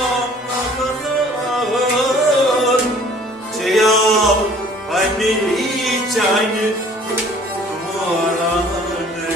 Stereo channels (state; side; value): normal; both; correlation 0.53